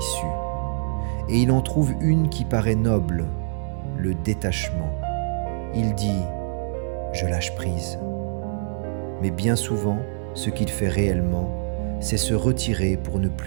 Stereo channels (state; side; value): silent; left; 62 dB below the other